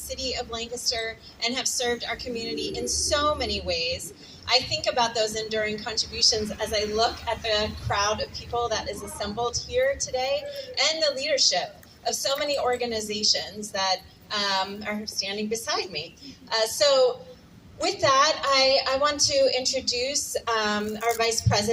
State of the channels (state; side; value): identical; both; correlation 1.00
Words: of Lancaster and have served our community in so many ways, I think about those enduring contributions as I look at the crowd of people that is assembled here today and the leadership of so many organizations that are standing beside me. So with that, I want to introduce our Vice